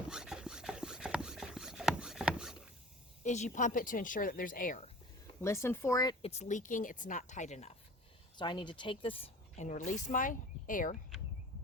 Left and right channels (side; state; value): both; normal; correlation 0.42